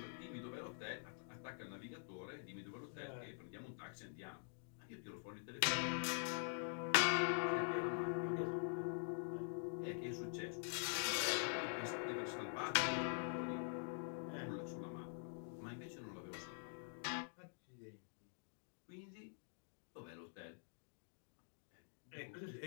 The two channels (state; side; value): silent; right; digital silence